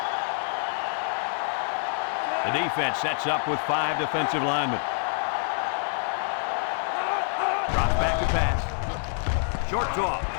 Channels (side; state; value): right; silent; 60 dB below the other